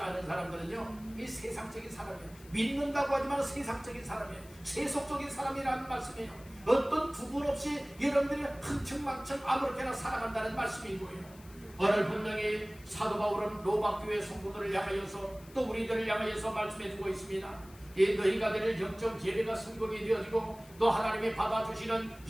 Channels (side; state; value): left; noise; hiss, 23 dB below the sound